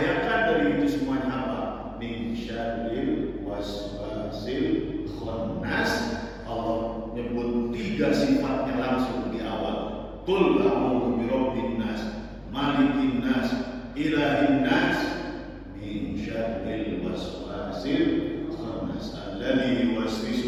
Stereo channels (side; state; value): both; identical; correlation 1.00